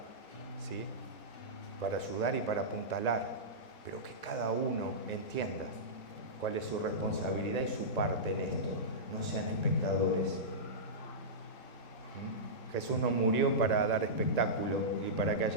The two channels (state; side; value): late; right; 6.1 ms